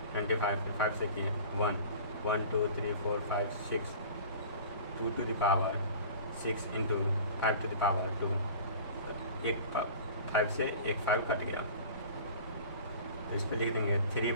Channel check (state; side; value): inverted; both; correlation -0.41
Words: 25, फिर 5 से किए 1 1 2 3 4 5 6 2 to the power 6 × 5 to the power 2, एक 5 से एक 5 कट गया, तो इस पर लिख देंगे